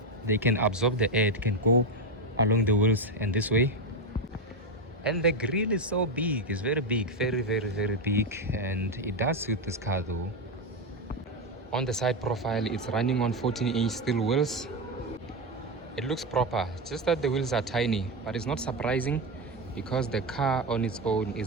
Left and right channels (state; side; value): normal; both; correlation 0.10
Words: absorb the air. It can go along the wheels and this way. And the grille is so big. It's very big, very big, and it does suit this car though. On the side profile, it's running on 14-inch steel wheels. It looks proper, just that the wheels are tiny, but it's not surprising because the car on its own